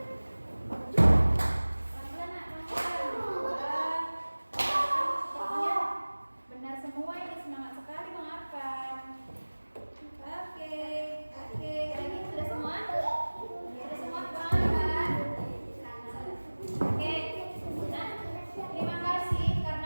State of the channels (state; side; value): inverted; both; correlation -1.00